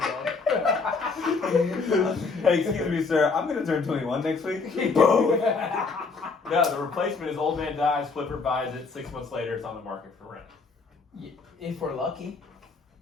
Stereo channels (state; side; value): quieter; right; 4.4 dB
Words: Hey, excuse me, sir. I'm gonna turn 21 next week. Boom. No, the replacement is old man dies, flipper buys it, 6 months later it's on the market for rent. If we're lucky,